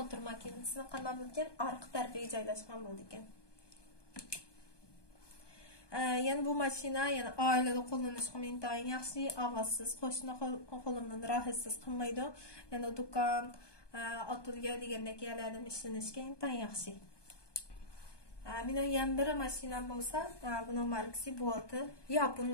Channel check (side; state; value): right; late; 1.2 ms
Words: makinasini qanday bo'lgan orqa tarafiga joylashgan bo'ldi ekan. Yani bu mashina yani oilada qo'llanishga intayin yaxshi, ovozsiz, qo'shni qo'limdan rohatsiz qilmaydi. Yani do'kon, ateliye degandek yerlarda ishlanishga intayin yaxshi. Mening ham bir mashinam bo'lsa, buning markasi Boati, Yapon